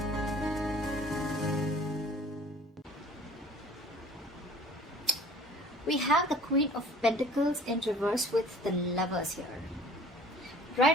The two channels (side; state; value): both; normal; correlation 0.49